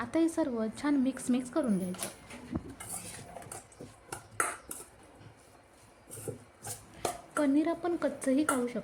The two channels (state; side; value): identical; both; correlation 1.00